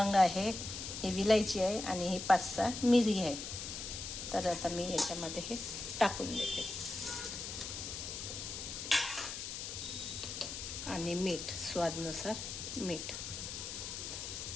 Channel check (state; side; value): noise; left; hiss, 6 dB below the sound